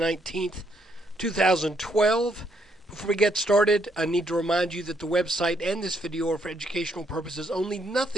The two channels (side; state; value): both; normal; correlation 0.73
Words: 2012. Before we get started, I need to remind you that the website and this video are for educational purposes only.